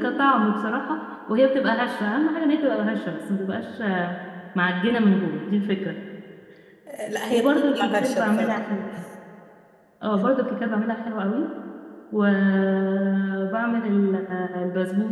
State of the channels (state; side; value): identical; both; correlation 1.00